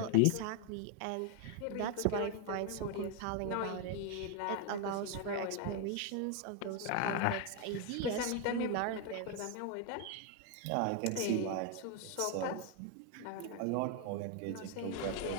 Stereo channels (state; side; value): different; both; correlation 0.01